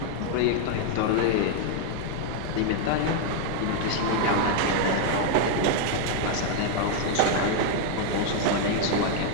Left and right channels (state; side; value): different; both; correlation 0.00